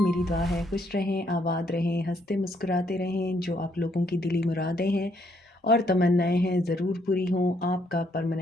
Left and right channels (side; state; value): both; normal; correlation 0.71